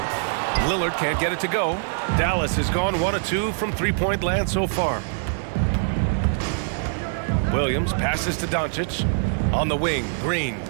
Lillard can't get it to go. Dallas has gone 1 of 2 from three-point land so far. Williams passes to Doncic. On the wing, Green.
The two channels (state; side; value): silent; left; digital silence